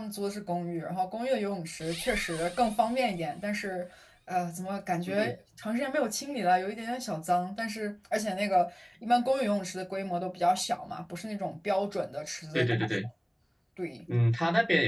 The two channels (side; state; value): both; identical; correlation 1.00